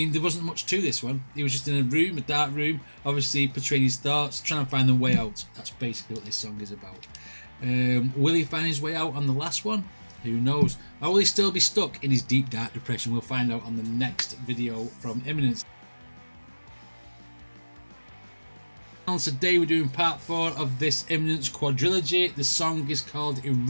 there wasn't much to this one. He was just in a room, a dark room, obviously portraying his thoughts, trying to find the way out. That's basically what this song is about. Will he find his way out on the last one? Who knows? Or will he still be stuck in his deep, dark depression? We'll find out on the next video from Imminence. Today we're doing part 4 of this Imminence quadrilogy. The song is called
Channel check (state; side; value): inverted; both; correlation -1.00